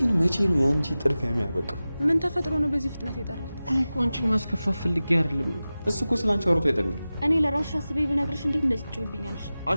መቼ ነው ያንቺ ጥድፊያ የሚያበቃው? ምን ተፈጥሮ ነው በዚህ ፍጥነት የጠራት? እኔ እኮ አንቺን ማስከፋት ፈልጌ አይደለም። እሱ እኮ ስላንቺ አውርቶ አይጠግብም። እኔ ለራስሽ አስቤ ብነግርሽ እንዴት እንደዚህ ትጮይብኛለሽ?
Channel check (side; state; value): both; inverted; correlation -0.96